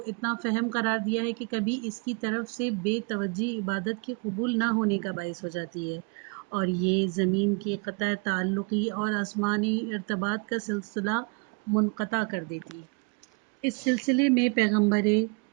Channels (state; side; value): quieter; left; 31.9 dB